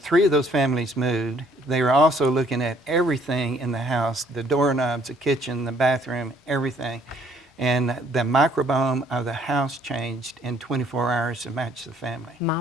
of those families moved, they were also looking at everything in the house, the doorknobs, the kitchen, the bathroom, everything. And the microbiome of the house changed in 24 hours to match the family. My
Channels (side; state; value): both; normal; correlation 0.63